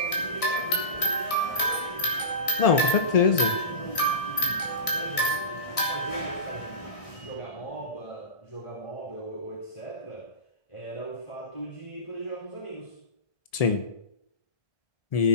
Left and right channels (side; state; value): right; late; 1.6 ms